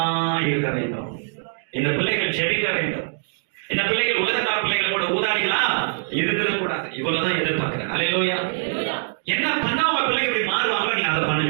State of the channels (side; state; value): left; silent; digital silence